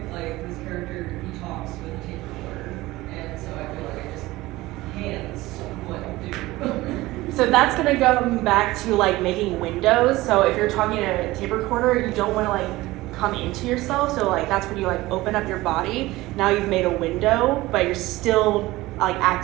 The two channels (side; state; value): left; quieter; 18.7 dB